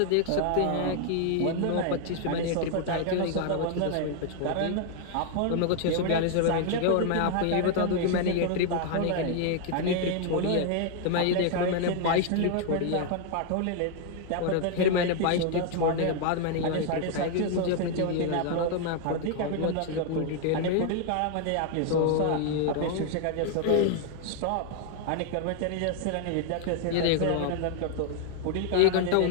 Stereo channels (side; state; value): both; different; correlation 0.00